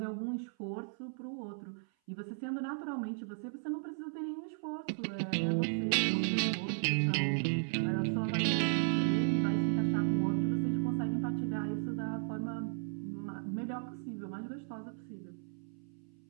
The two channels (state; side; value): silent; left; 54 dB below the other